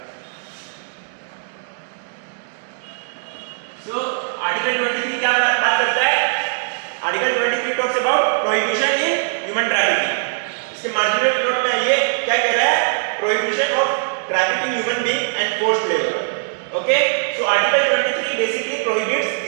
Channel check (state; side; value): silent; left; digital silence